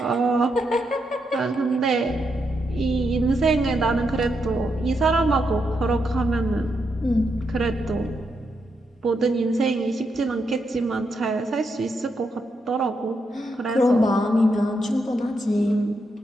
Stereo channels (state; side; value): normal; both; correlation 0.81